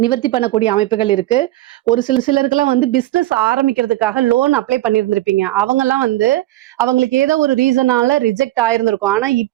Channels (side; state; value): left; quieter; 16.3 dB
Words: பண்ணக்கூடிய அமைப்புகள் இருக்கு. ஒரு சிலருக்கெல்லாம் வந்து பிசினஸ் ஆரம்பிக்கிறதுக்காக லோன் அப்ளை பண்ணியிருந்திருப்பீங்க. அவங்க எல்லாம் வந்து அவங்களுக்கு ஏதோ ஒரு ரீசனால ரிஜெக்ட் ஆயிருந்திருக்கும். ஆனா